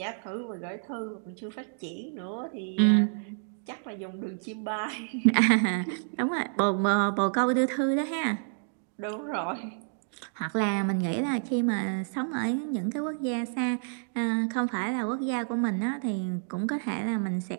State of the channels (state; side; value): silent; left; digital silence